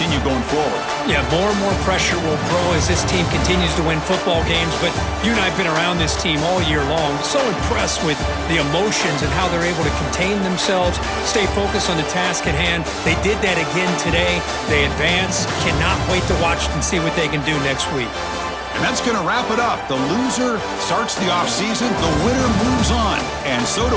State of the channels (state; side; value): identical; both; correlation 1.00